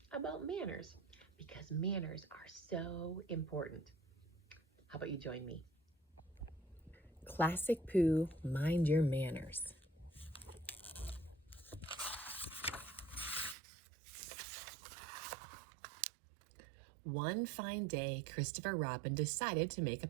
about manners because manners are so important. How about you join me? Classic Pooh, mind your manners. One fine day, Christopher Robin decided to make a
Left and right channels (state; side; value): drops out; left; at 13.6 s